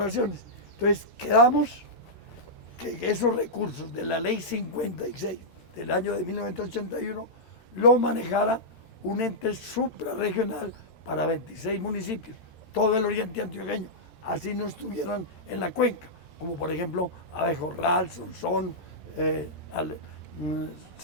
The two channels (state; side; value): late; right; 13 ms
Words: Entonces, quedamos que esos recursos de la ley 56 del año de 1981 lo manejara un ente suprarregional para 26 municipios, todo el oriente antioqueño, así no estuvieran en la cuenca, como por ejemplo Abejorral, Sonsón,